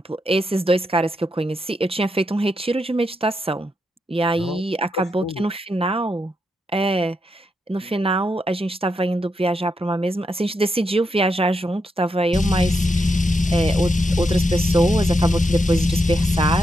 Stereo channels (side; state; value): both; normal; correlation 0.82